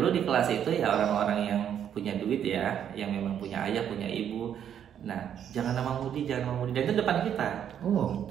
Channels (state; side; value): quieter; left; 9.3 dB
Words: di kelas itu ya orang-orang yang punya duit ya, yang memang punya ayah, punya ibu. Nah jangan nama Mudi, jangan nama Mudi, dan itu depan kita.